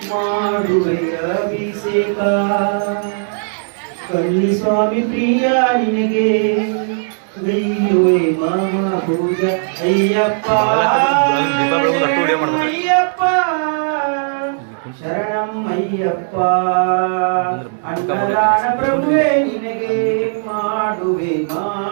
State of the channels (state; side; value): silent; left; digital silence